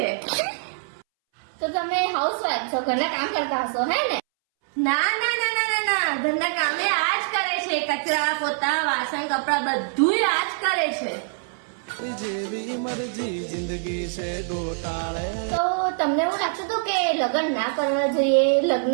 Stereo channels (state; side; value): silent; left; 62 dB below the other